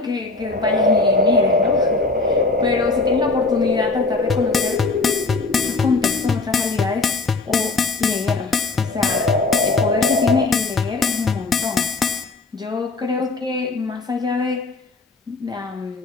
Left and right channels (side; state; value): right; quieter; 3.6 dB